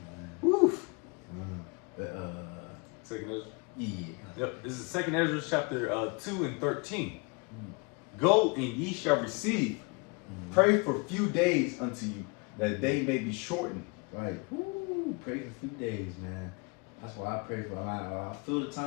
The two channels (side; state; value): right; quieter; 30.9 dB